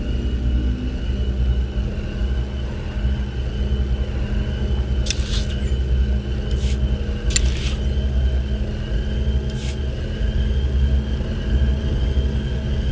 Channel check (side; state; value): both; identical; correlation 1.00